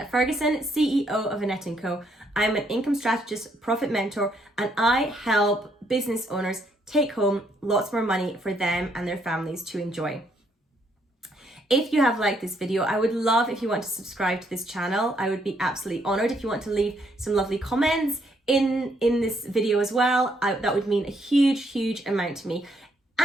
Ferguson, CEO of Annette & Co. I'm an income strategist, profit mentor, and I help business owners take home lots more money for them and their families to enjoy. If you have liked this video, I would love if you want to subscribe to this channel. I would be absolutely honored if you want to leave some lovely comments in this video as well. That would mean a huge, huge amount to me.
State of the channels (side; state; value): both; normal; correlation 0.72